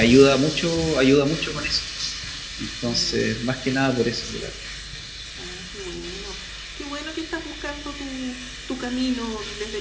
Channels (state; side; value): identical; both; correlation 1.00